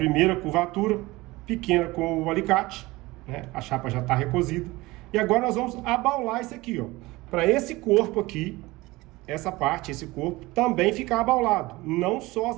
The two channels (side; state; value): left; quieter; 20.8 dB